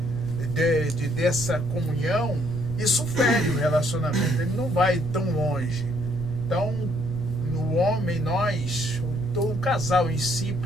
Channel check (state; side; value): noise; left; rumble, 11 dB below the sound